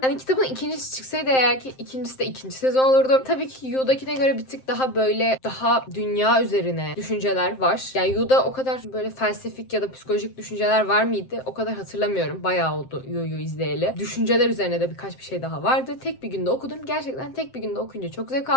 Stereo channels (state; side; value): late; right; 7.7 ms